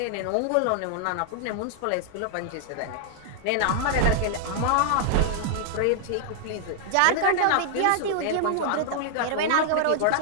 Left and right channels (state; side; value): different; both; correlation -0.01